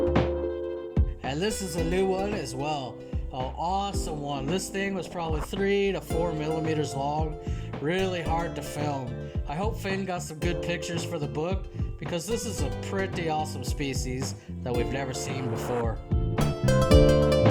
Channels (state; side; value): identical; both; correlation 1.00